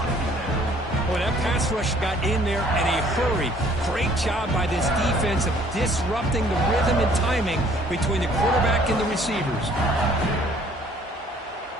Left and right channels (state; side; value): normal; both; correlation 0.58